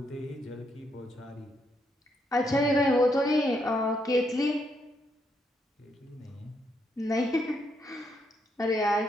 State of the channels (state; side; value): normal; both; correlation 0.77